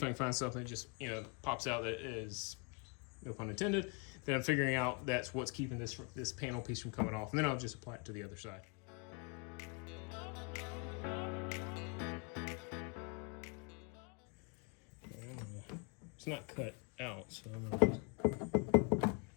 I can find something that just pops out that is, no pun intended. Then I'm figuring out that's what's keeping this panel piece from coming off, and then I'll just apply it to the other side. It's not cut out, so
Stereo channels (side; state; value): right; quieter; 33.3 dB